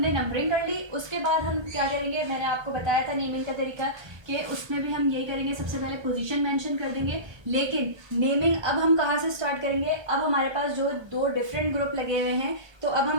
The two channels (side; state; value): left; late; 1.3 ms